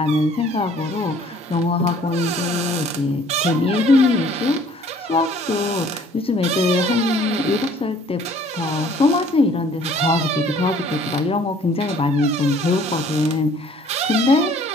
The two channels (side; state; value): both; normal; correlation 0.56